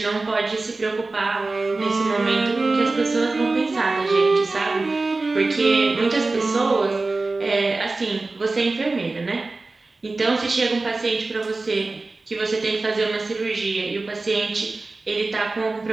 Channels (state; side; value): quieter; left; 3.4 dB